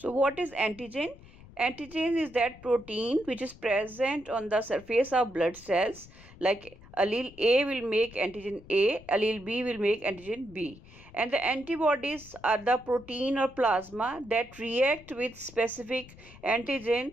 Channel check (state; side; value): noise; left; rumble, 21 dB below the sound